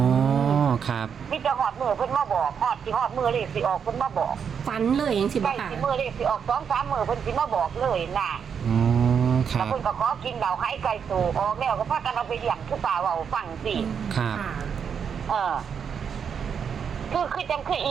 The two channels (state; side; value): quieter; left; 7.1 dB